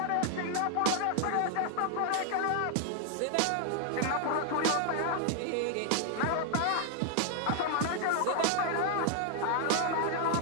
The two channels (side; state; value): both; different; correlation 0.00